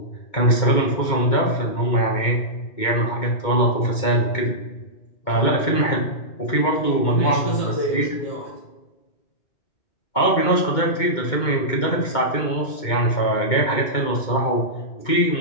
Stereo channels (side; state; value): right; late; 2.2 ms